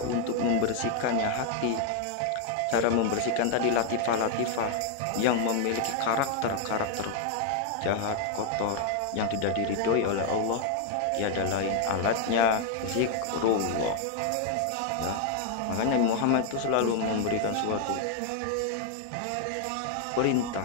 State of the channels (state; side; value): different; both; correlation 0.00